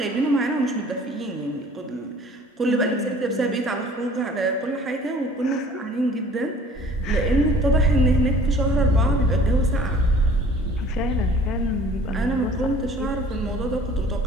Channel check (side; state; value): both; normal; correlation 0.50